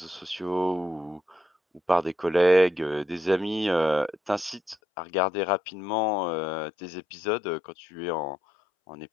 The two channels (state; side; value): drops out; right; at 4.8 s